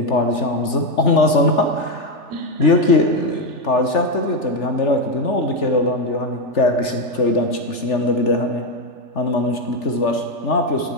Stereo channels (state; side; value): late; right; 3.4 ms